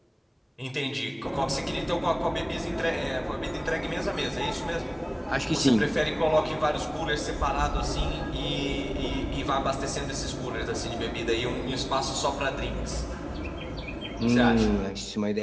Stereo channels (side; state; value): both; identical; correlation 1.00